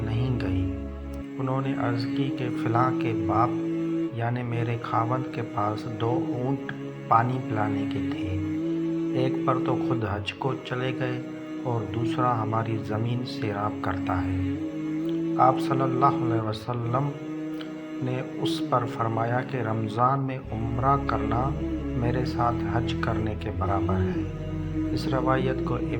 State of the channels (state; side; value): identical; both; correlation 1.00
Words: نہیں گئی؟ انہوں نے عرض کی کہ فلاں کے باپ یعنی میرے خاوند کے پاس 2 اونٹ پانی پلانے کے تھے، ایک پر تو خود حج کو چلے گئے اور دوسرا ہماری زمین سیراب کرتا ہے۔ آپ صلی اللہ علیہ وسلم نے اس پر فرمایا کہ رمضان میں عمرہ کرنا میرے ساتھ حج کرنے کے برابر ہے۔ اس روایت کو